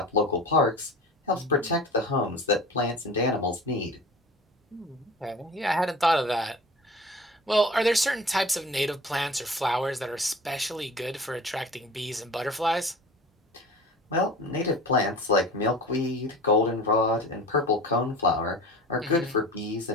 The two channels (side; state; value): both; normal; correlation 0.39